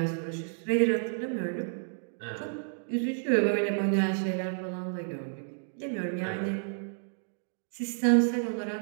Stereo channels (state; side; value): silent; left; digital silence